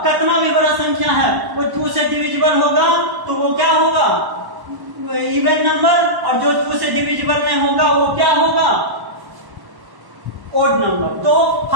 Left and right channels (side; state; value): left; late; 1.1 ms